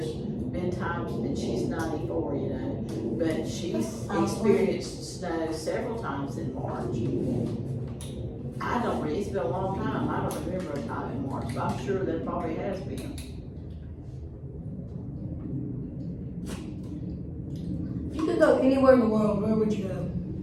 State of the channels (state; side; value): identical; both; correlation 1.00